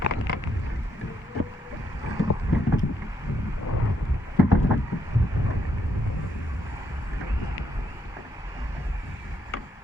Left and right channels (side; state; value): both; normal; correlation 0.76